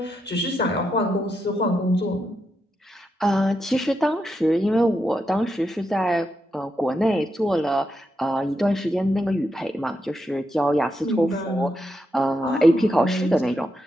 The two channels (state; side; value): normal; both; correlation 0.84